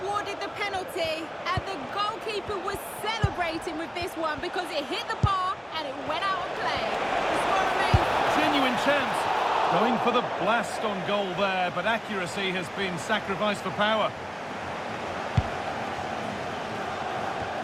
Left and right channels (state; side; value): identical; both; correlation 1.00